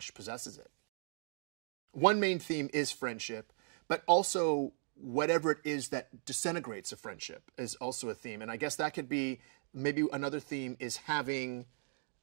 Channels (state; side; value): silent; left; digital silence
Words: possesses it. One main theme is friendship, but also whatever it is that disintegrates a friendship is also a theme. And I guess that could be, maybe another theme is having